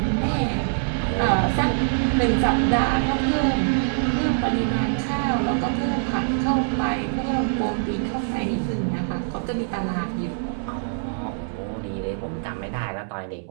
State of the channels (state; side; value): silent; left; 63 dB below the other